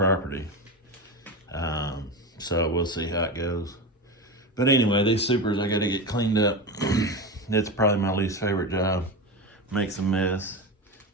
So we'll see how it goes. But anyway, these supers I gotta get cleaned up. It's probably my least favorite job. Makes a mess,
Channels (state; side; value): normal; both; correlation 0.21